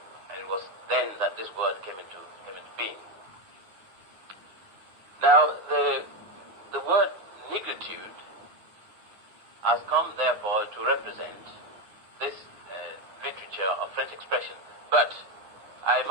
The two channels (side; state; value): left; late; 9.5 ms